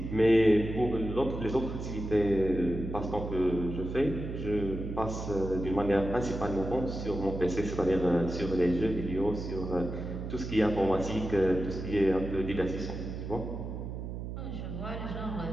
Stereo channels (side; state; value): right; noise; hum, 6 dB below the sound